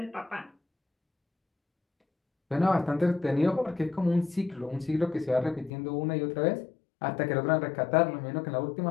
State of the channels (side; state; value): right; drops out; at 5.7 s